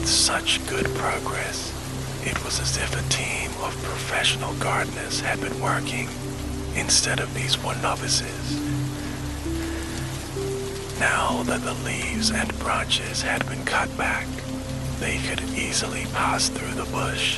such good progress, it was as if a team of professional gardeners had been working, instead of these one novices. Now that the leaves and branches had been cut back, they could easily pass through the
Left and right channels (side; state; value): both; identical; correlation 1.00